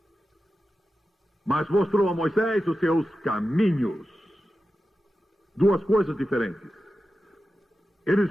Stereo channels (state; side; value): normal; both; correlation 0.92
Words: mas mostrou a Moisés os seus caminhos. Duas coisas diferentes.